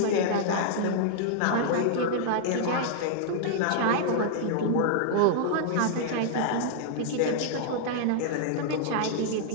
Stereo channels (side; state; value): both; different; correlation -0.01